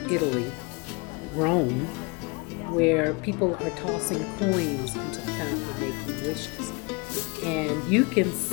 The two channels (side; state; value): right; quieter; 29.2 dB